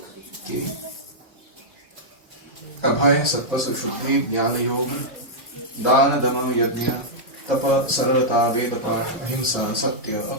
कि अभय सत्व सुशुद्धि ज्ञान योग दान दम यज्ञ तप सरलता वेद पाठ अहिंसा सत्य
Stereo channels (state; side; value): normal; both; correlation -0.08